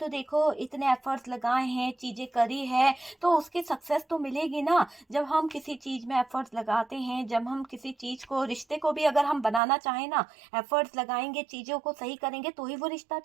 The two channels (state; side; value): drops out; left; at 9.6 s